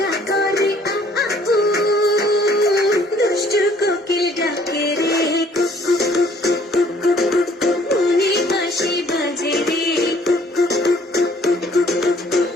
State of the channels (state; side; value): normal; both; correlation 0.59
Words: করে আ আ উ, দুষ্টু কোকিল ডাকে রে কুকু কুকু কুকু কুকু, মনে বাঁশি বাজে রে কুকু কুকু কুকু কুকু,